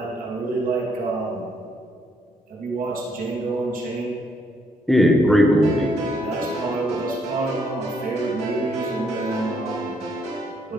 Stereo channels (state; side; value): normal; both; correlation 0.72